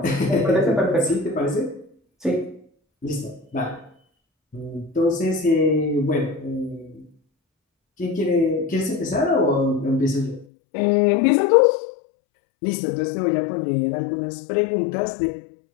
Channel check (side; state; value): right; drops out; at 10.5 s